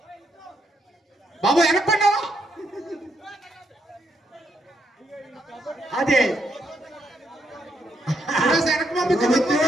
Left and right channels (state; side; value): normal; both; correlation 0.76